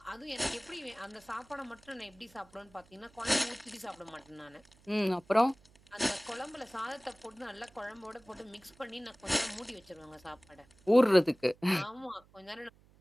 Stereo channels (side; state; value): right; noise; hum, 28 dB below the sound